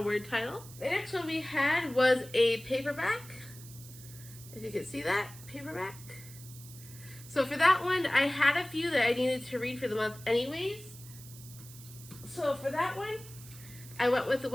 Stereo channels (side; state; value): right; noise; hiss, 17 dB below the sound